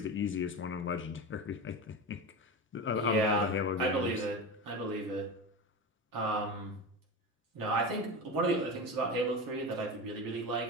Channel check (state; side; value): normal; both; correlation 0.24